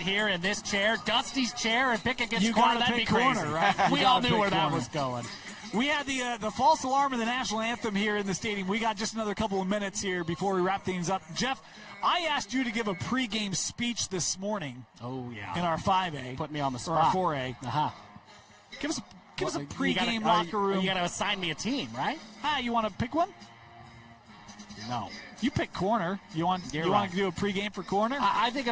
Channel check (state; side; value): identical; both; correlation 1.00